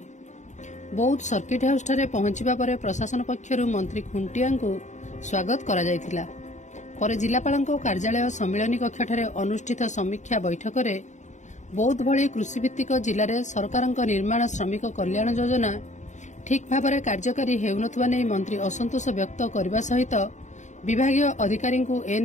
बौद्ध सर्किट हाउस ठारे पहुंचबा परे प्रशासन पक्षरु मंत्री खुंटिया को स्वागत करा जायथिला। परे जिलापालଙ୍କ कार्यालय सम्मिलनी कक्ष ठारे अनुष्ठित समीक्षा बैठक रे बौद्ध भली कृषिभित्तिक जिले में सरकार निर्माण श्रमिक कल्याण योजना ठीक भाव में कार्यकारी हेउनथुवा नै मंत्री असंतोष व्यक्त करने सहित विभागीय अधिकारी को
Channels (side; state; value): right; late; 0.34 ms